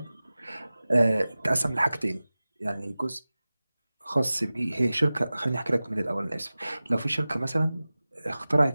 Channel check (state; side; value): inverted; both; correlation -0.97